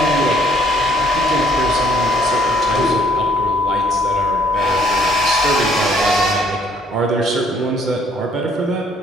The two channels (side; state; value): both; normal; correlation 0.64